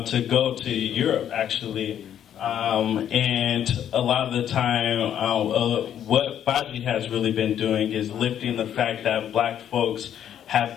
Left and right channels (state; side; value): quieter; right; 10.0 dB